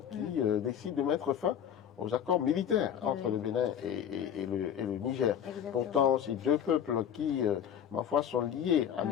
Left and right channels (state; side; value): quieter; right; 9.0 dB